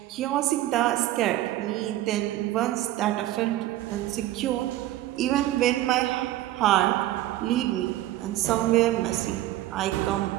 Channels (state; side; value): quieter; left; 14.8 dB